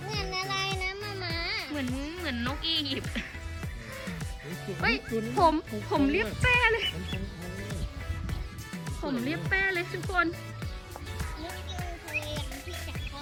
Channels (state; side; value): identical; both; correlation 1.00